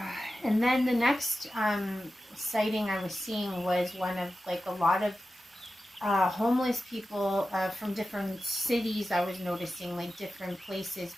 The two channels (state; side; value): normal; both; correlation 0.93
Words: And then the next sighting I was seeing was one of like a lot of homeless people from different cities. I was noticing like different places,